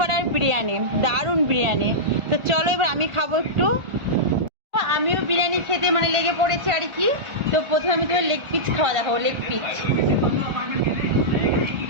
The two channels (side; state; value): left; late; 1.4 ms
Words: বিরিয়ানি, দারুণ বিরিয়ানি। তো চলো এবার আমি খাবো একটু। আমিও বিরিয়ানি খেতে লেগে পড়েছে আর কি। তো প্রথমে আমি তোমার লেগ পিস খাওয়া দেখাবো। লেগ পিস